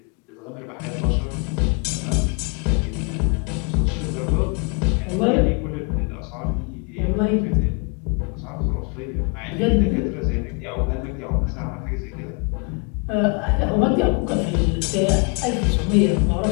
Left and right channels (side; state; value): right; quieter; 33.8 dB